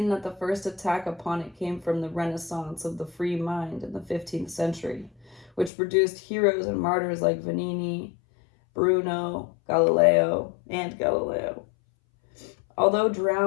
that the first attack upon it came from the Renaissance of the free mind in the 15th century, which produced heroes and martyrs like Vanini, Bruno, Galileo. Although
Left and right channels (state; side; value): drops out; right; at 5.7 s